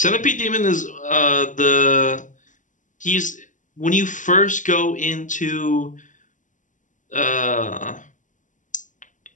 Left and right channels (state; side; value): late; right; 0.37 ms